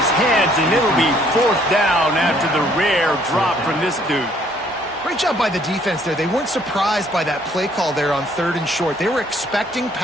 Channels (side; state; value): both; normal; correlation 0.63